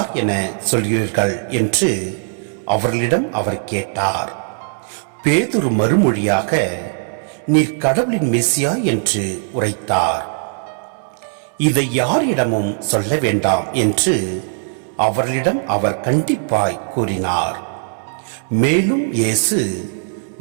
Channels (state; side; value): silent; left; digital silence